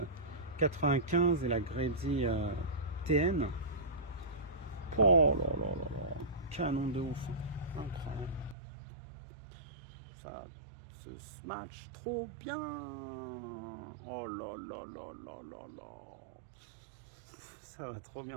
95 et la Grady TN. Oh là là là là. Canon de ouf. Incroyable. Ça se match trop bien. Oh là là là là là là. Ça va trop bien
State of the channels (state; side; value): drops out; left; at 8.6 s